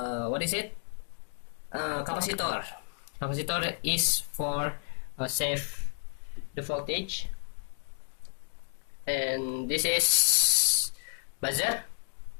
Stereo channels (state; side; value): silent; right; digital silence